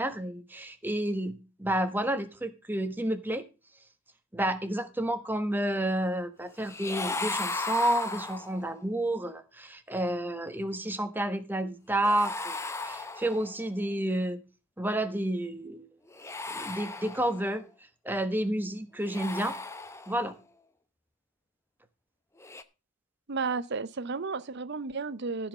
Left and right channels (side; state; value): both; normal; correlation 0.69